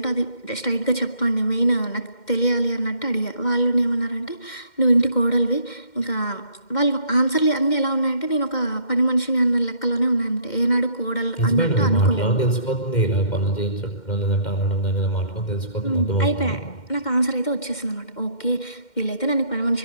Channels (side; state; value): right; late; 2.1 ms